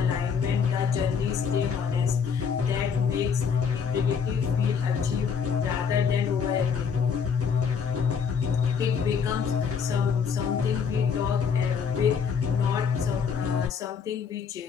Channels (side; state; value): right; quieter; 6.5 dB